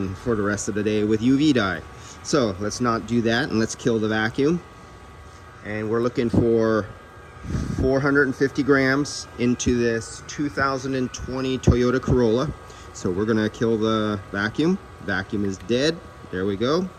for the rest of the day with UV dye. So let's not do that, and let's kill the vacuum. And we're looking for 450 grams into this 2020 Toyota Corolla. So we're gonna kill the vacuum. Vacuum is dead. There we go.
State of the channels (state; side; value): identical; both; correlation 1.00